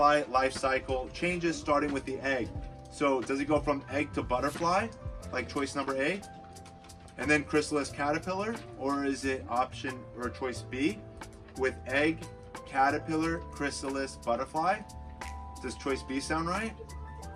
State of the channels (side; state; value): both; identical; correlation 1.00